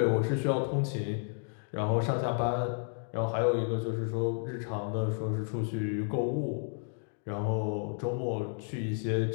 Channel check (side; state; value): right; silent; 55 dB below the other